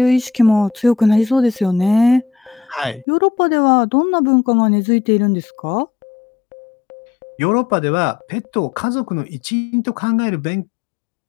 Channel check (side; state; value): right; drops out; at 3.1 s